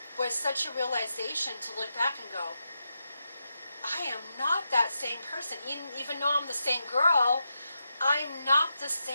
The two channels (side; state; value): both; inverted; correlation -0.86